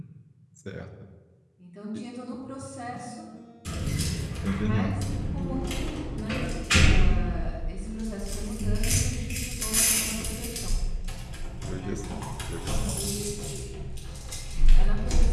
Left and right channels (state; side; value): identical; both; correlation 1.00